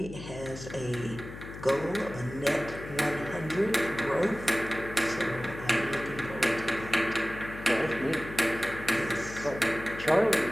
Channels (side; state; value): left; noise; hum, 12 dB below the sound